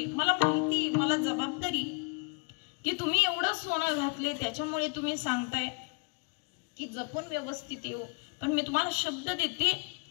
मला माहिती, मला जबाबदारी की तुम्ही एवढं सोनं घातले, त्याच्यामुळे तुम्ही सांगताय की जपून व्यवस्थित येऊ. पण मी तुम्हाला शब्द देते,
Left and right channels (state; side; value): quieter; right; 33.1 dB